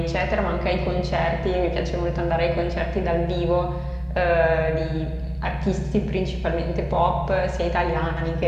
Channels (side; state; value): both; identical; correlation 1.00